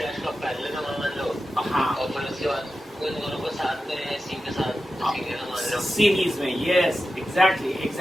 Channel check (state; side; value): normal; both; correlation 0.92